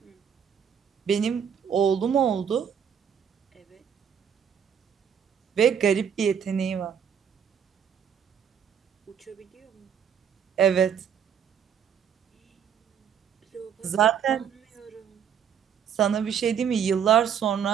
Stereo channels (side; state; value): left; quieter; 8.0 dB